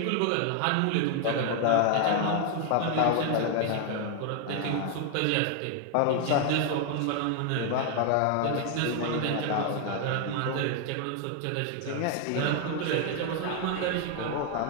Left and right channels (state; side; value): different; both; correlation 0.00